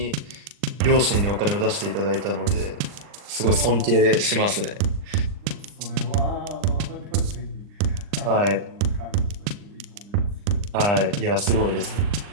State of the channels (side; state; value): left; late; 39 ms